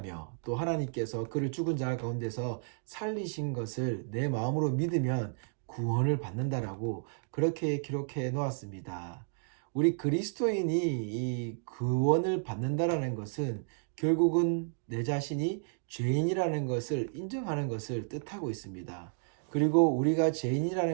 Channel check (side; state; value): left; silent; digital silence